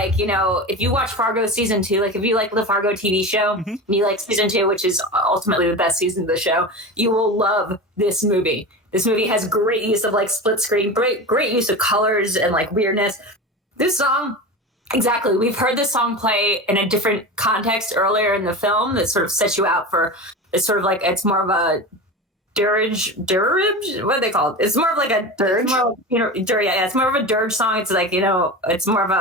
you know, if you watch Fargo season 2, like if you like the Fargo TV show, and you like season 2, which is ultimately the best season of the show, you will love this movie. This movie has great use of like split screen, great use of colors and like weirdness. This song, exactly. We've heard this song play in a different context earlier in the film that sort of sets you out for. It's sort of like it's more of a dirge. What are they called? It's more of like a dirge. It's more of a dirge song. It's like, you know, it's more of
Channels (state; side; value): normal; both; correlation 0.27